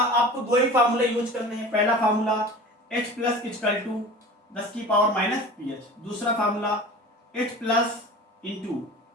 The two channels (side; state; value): both; normal; correlation 0.38